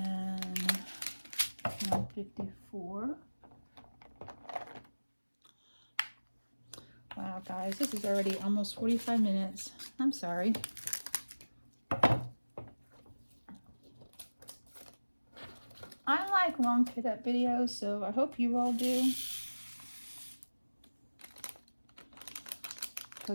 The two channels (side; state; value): both; inverted; correlation -1.00